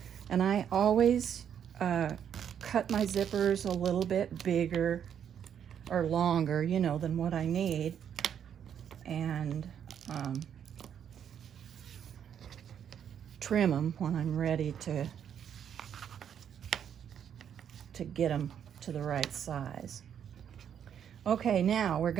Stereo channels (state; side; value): quieter; left; 8.7 dB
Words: And I always cut my zippers a little bit bigger or longer, you know, than what I need. And trim them when I'm ready to get them to the right size. Okay, now we're